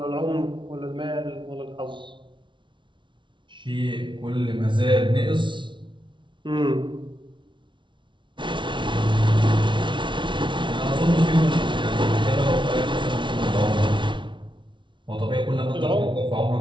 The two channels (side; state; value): left; late; 0.24 ms